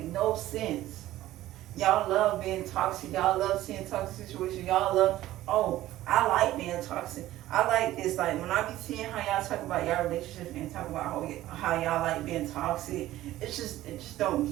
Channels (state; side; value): quieter; left; 15.0 dB